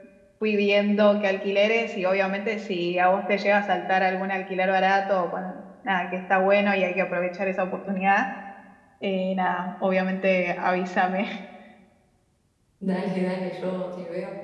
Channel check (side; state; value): both; identical; correlation 1.00